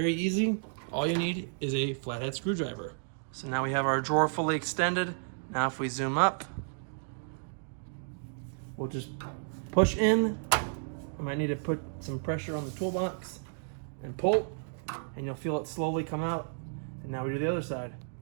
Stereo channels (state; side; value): silent; left; digital silence